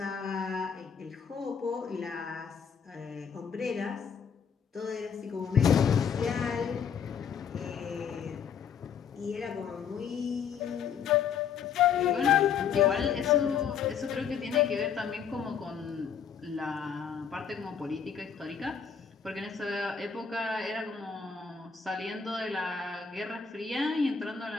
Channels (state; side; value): quieter; right; 7.1 dB